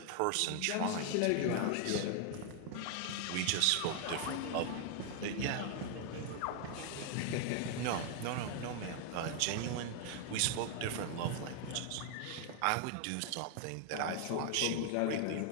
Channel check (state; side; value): different; both; correlation 0.00